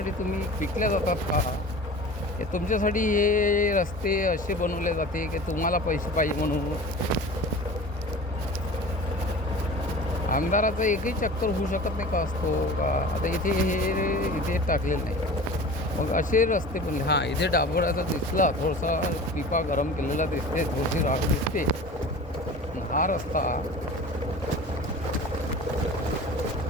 तुम्ही विकल्या जातात का? हे तुमच्यासाठी हे रस्ते असे बनवले जाते की तुम्हाला पैसे पाहिजे म्हणून. आमदाराचा एकही चक्कर होऊ शकत नाही का असतो का? आता इथे टाकलेलं नाही. मग असे रस्ते पण हां इथे डांबराचा दिसला थोडासा पिपा गरम केलेला दिसते, थोडीशी राख दिसते. हा रस्ता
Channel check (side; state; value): both; normal; correlation 0.38